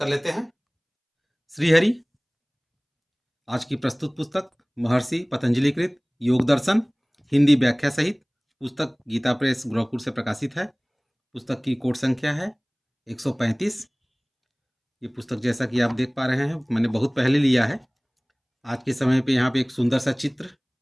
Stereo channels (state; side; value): identical; both; correlation 1.00